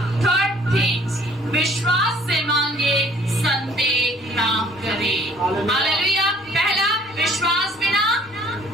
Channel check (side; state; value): both; normal; correlation 0.57